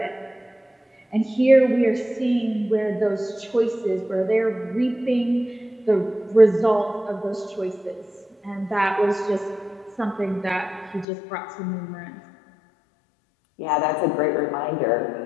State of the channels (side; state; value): right; drops out; at 11.1 s